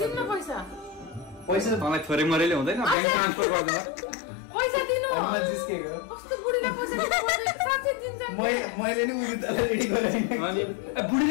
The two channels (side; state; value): right; drops out; at 3.0 s